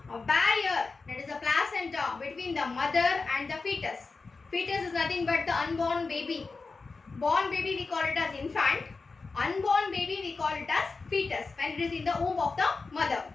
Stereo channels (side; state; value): right; quieter; 4.2 dB